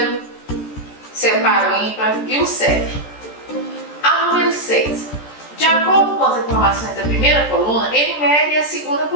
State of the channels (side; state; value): right; late; 14 ms